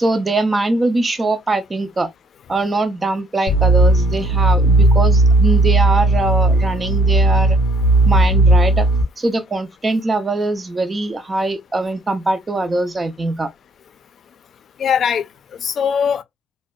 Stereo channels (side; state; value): both; normal; correlation 0.64